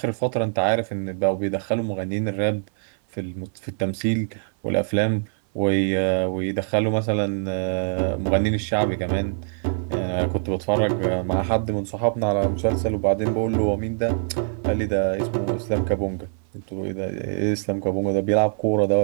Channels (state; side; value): silent; left; 63 dB below the other